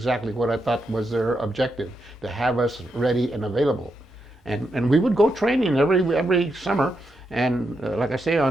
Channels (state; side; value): normal; both; correlation 0.83